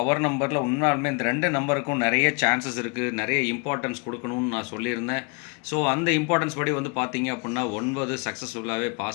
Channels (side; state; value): right; quieter; 33.2 dB